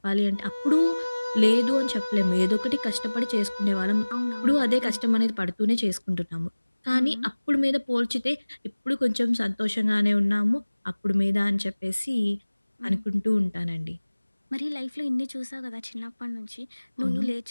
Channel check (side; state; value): both; inverted; correlation -1.00